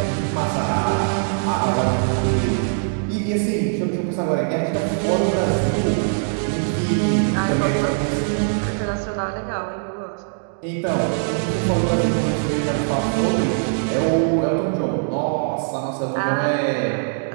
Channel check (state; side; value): silent; left; digital silence